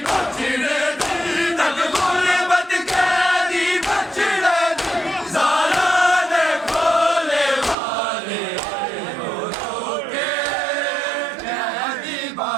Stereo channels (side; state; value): left; drops out; at 7.8 s